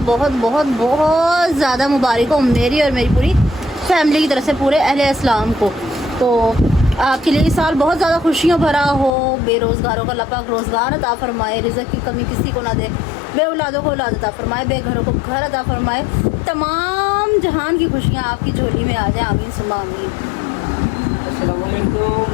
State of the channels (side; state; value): right; drops out; at 9.1 s